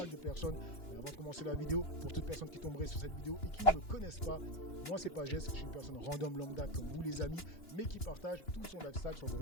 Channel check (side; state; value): right; late; 2.9 ms